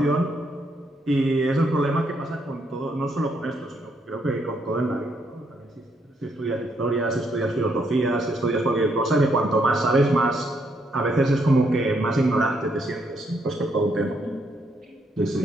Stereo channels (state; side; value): normal; both; correlation 0.74